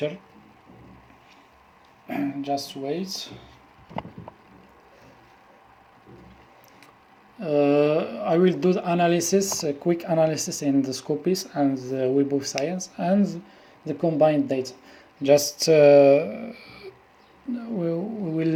Just wait. I will do the analysis, a quick analysis in the Scopus and the Web of Science and the combined data. Just I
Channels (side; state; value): both; identical; correlation 1.00